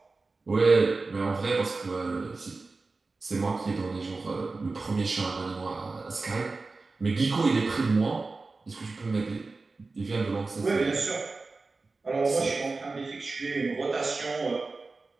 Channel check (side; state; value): left; quieter; 3.8 dB